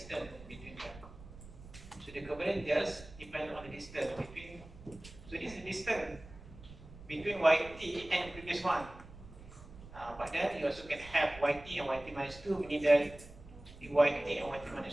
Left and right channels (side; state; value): right; noise; rumble, 17 dB below the sound